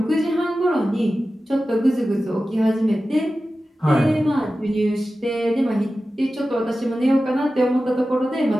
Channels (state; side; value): normal; both; correlation 0.94